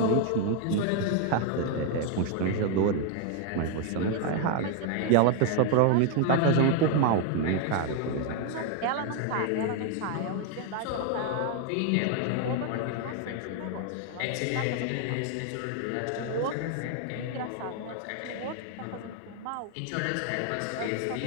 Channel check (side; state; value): both; different; correlation 0.00